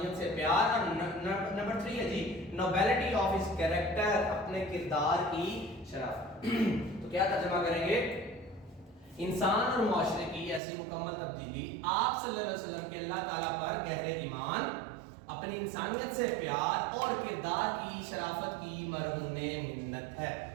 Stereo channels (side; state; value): left; drops out; at 10.6 s